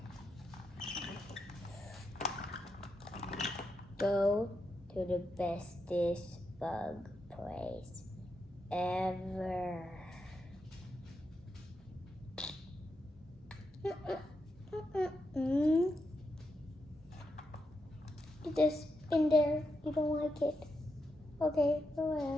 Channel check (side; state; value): both; normal; correlation 0.84